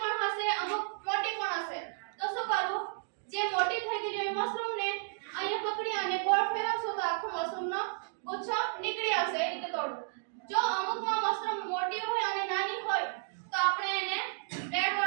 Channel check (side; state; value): left; silent; digital silence